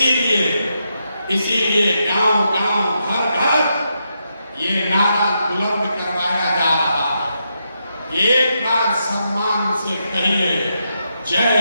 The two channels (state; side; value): inverted; both; correlation -0.83